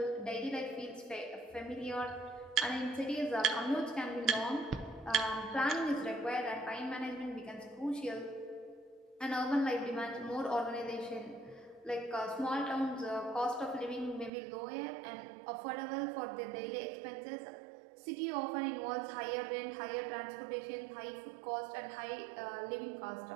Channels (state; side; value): drops out; left; at 14.3 s